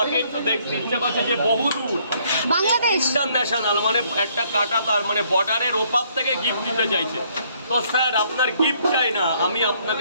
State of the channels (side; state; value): both; inverted; correlation -0.66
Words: একটু দেখতে ইচ্ছা করছে যে বহু দূর বাংলাদেশ ইন্টারন্যাশনাল, মানে একটা কাটা তার মানে বর্ডারের ওপার থেকে গিফট দিতে চাইছে। তো স্যার আপনার গিফট চাই না, আমি